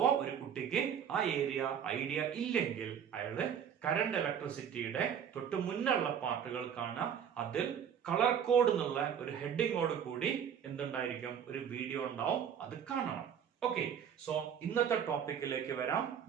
ഒരു കുട്ടിക്ക് ആ ഏരിയ ഐഡിയ ഇല്ലെങ്കിൽ അയാള് കറണ്ട് ഇലക്ട്രിസിറ്റിയുടെ തൊട്ട് മുന്നുള്ള പാർട്ടുകൾ കാണാം. അതിൽ കളർ കോഡ് എന്നുള്ള ഒരു ഹെഡിങ്ങോട് കൂടി എന്തുണ്ടായിരിക്കും, ഒരു വീഡിയോ ഉണ്ടാവും, അത് കാണണം. ഓക്കെ, സോ ഇന്നത്തെ ടോപ്പിക്കിലേക്ക് വരാം.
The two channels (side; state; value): left; quieter; 8.3 dB